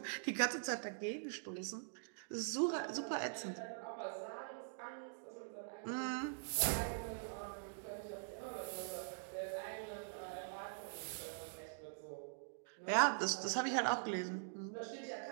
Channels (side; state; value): left; silent; digital silence